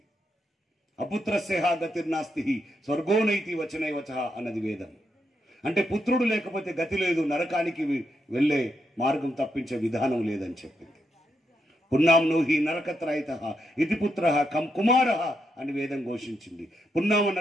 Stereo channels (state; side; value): normal; both; correlation 0.81